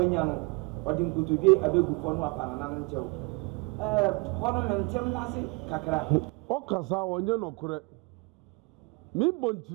no odi nkutudwe abegu fo no apana na nchew hono mentem wase kakra o kasa wonye nokore mi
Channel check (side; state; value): left; quieter; 28.5 dB